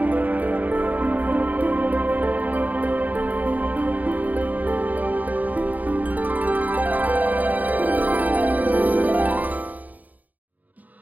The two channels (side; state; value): left; late; 0.079 ms